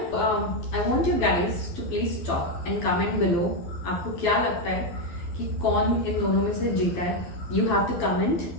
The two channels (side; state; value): right; late; 12 ms